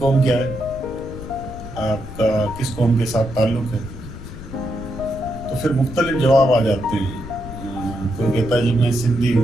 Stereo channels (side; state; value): left; noise; rumble, 11 dB below the sound